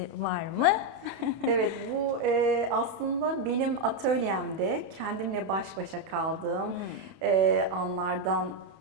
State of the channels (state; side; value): late; left; 31 ms